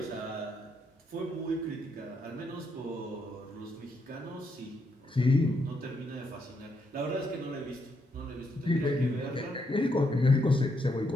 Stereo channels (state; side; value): normal; both; correlation 0.78